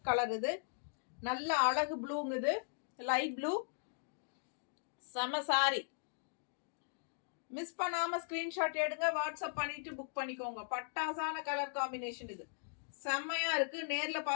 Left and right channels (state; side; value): silent; right; digital silence